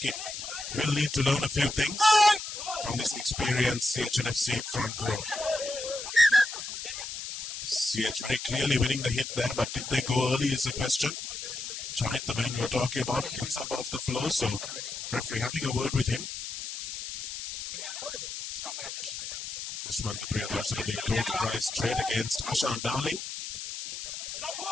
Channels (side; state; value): left; noise; hiss, 7 dB below the sound